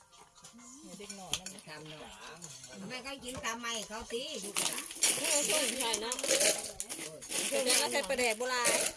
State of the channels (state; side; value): identical; both; correlation 1.00